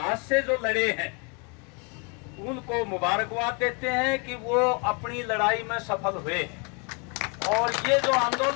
से जो लड़े हैं, उनको मुबारकबाद देते हैं कि वो अपनी लड़ाई में सफल हुए हैं। और ये जो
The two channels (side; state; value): right; quieter; 33.9 dB